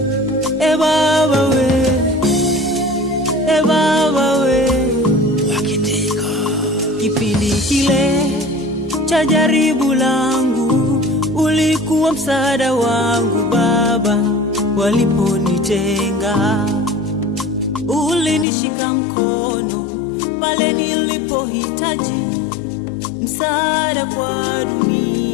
Baba we, Baba we. Wakitika Kipindi kile cha jaribu langu ulikuwa msaada wangu Baba, waliponitenga ulinishika mkono pale nilipohitaji msaada kwa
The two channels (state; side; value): drops out; right; at 18.4 s